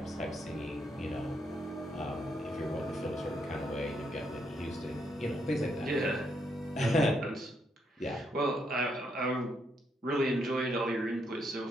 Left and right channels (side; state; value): both; normal; correlation 0.77